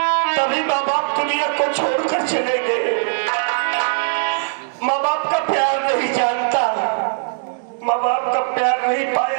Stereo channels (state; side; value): silent; left; digital silence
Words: तभी माँ बाप दुनिया को छोड़कर चले गए। माँ बाप का प्यार नहीं जानता, माँ बाप का प्यार नहीं